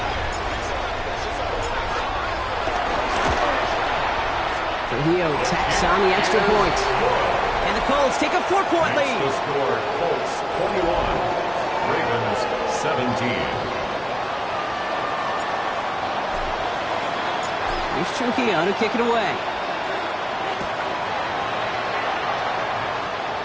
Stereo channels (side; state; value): both; identical; correlation 1.00